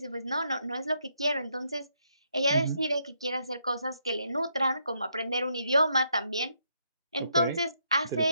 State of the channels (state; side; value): inverted; both; correlation -0.76